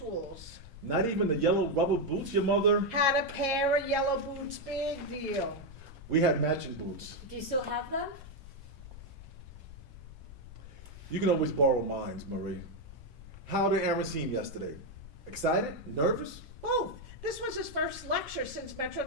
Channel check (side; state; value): left; noise; rumble, 16 dB below the sound